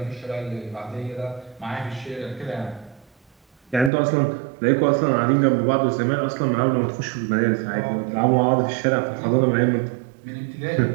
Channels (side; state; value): left; drops out; at 3.9 s